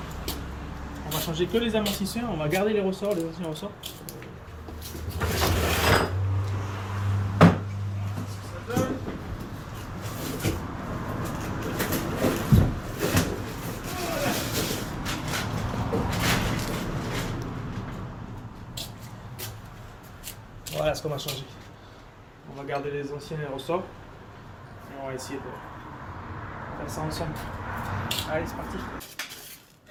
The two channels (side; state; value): both; identical; correlation 1.00